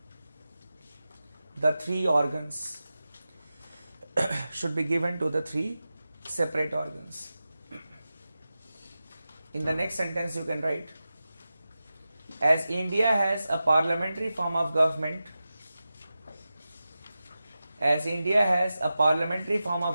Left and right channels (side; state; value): both; inverted; correlation -0.93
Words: the three organs should be given to the three separate organs. In the next sentence you can write, as India has a parliamentary form of government, as India has a parliamentary form